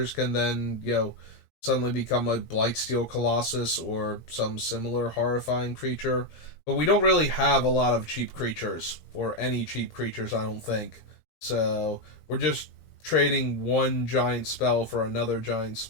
can then, suddenly become a Blightsteel Colossus or some similar horrifying creature. But we don't really have a lot of cheap creatures, or any cheap creatures, I don't think. So we're just trading one giant spell for another giant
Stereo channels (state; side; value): late; right; 18 ms